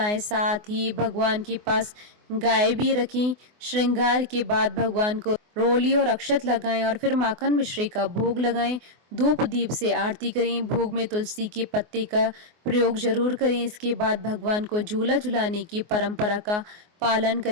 साथ ही भगवान के पास गाय भी रखें। श्रृंगार के बाद भगवान को रोली और अक्षत लगाएं और फिर माखन मिश्री का भोग लगाएं। धूप दीप से आरती करें। भोग में तुलसी के पत्ते का प्रयोग जरूर करें। इसके बाद भगवान को झूला झुलाने की परंपरा का पालन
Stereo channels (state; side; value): late; left; 24 ms